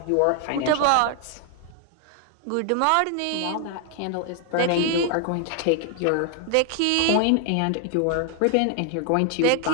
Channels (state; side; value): different; both; correlation 0.00